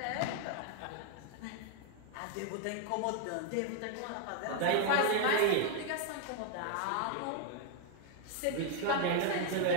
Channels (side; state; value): both; different; correlation 0.00